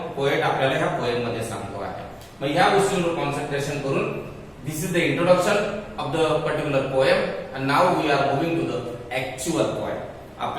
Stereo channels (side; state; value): both; identical; correlation 1.00